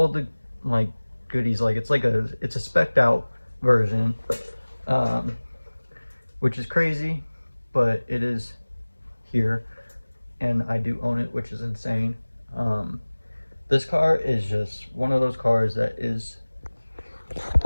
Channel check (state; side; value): inverted; both; correlation -1.00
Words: the like goodies. Like it's a spec'd out version, which is crazy, but it is here, and I do own it, which is insane. This car is just one of those cars that